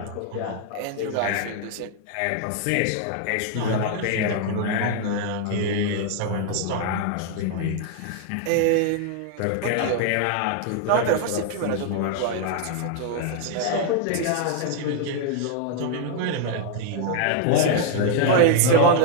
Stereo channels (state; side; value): different; both; correlation 0.00